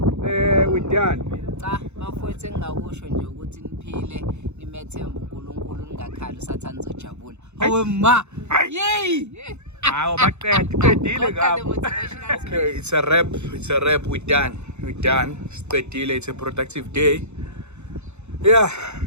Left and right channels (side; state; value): left; late; 0.82 ms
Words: with Dan. Cha, bafowethu engingakusho nje ukuthi niphile nimethemba uNkulunkulu ningakhali usathana uzojabula. Hawe ma. Yey! Hawo baqedile ngapha. Okay, it's a rap. We're done. Siqedile. It's a productive day. Yeah.